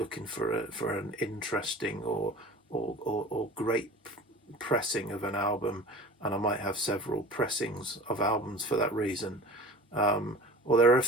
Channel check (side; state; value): both; normal; correlation 0.40